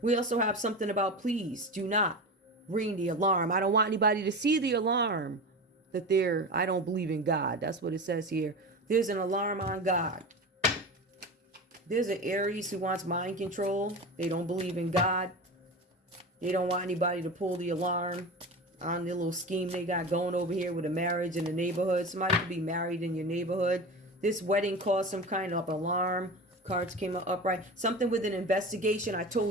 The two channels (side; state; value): both; normal; correlation 0.28